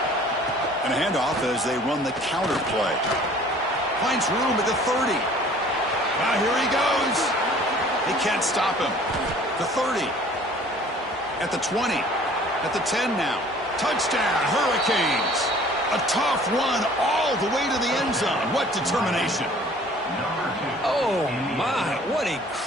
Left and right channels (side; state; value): both; normal; correlation 0.51